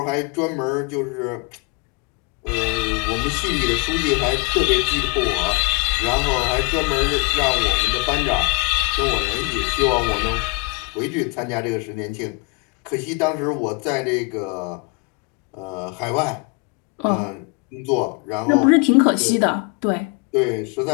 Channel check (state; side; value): quieter; right; 29.0 dB